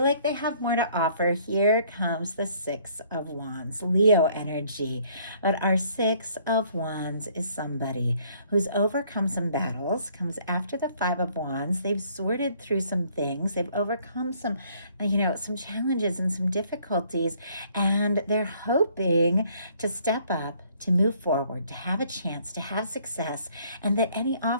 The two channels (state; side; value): inverted; both; correlation -0.62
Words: like they have more to offer. Here comes the 6 of Wands, Leo energy. But our 6 of Wands is somebody who's overcome some battles, comes after the 5 of Wands. They've sorted through some things. They've overcome some challenges and some difficulties, and they're hoping to step up, to move forward, to have a chance, to have success, and that any